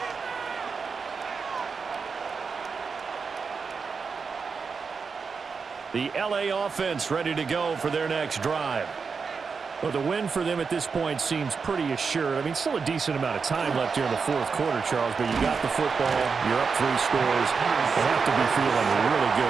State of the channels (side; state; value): left; quieter; 5.3 dB